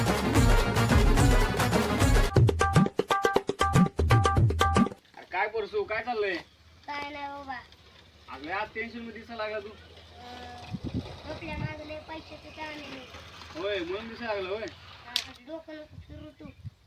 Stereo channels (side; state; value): both; identical; correlation 1.00